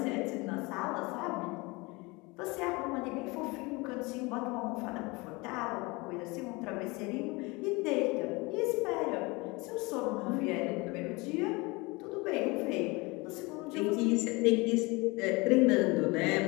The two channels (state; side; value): quieter; right; 25.2 dB